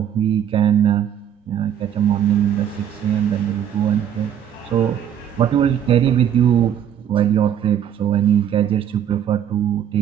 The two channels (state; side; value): quieter; left; 9.5 dB